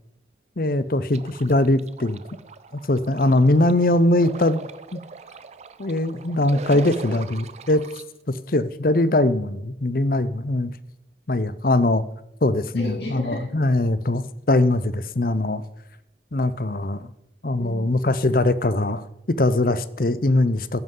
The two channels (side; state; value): both; normal; correlation 0.58